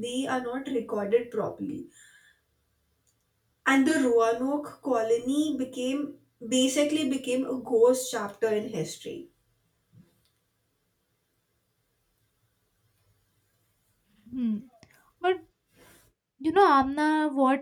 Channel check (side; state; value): both; identical; correlation 1.00